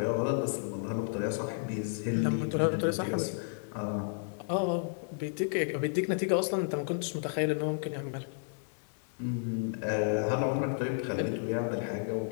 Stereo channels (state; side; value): silent; right; 56 dB below the other